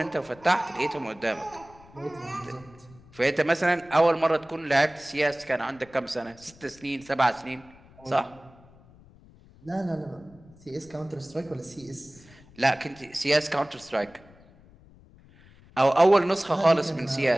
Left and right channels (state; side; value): noise; left; rumble, 25 dB below the sound